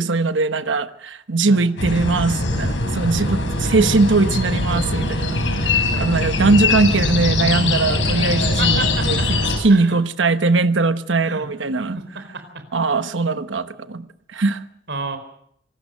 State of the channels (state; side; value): normal; both; correlation 0.45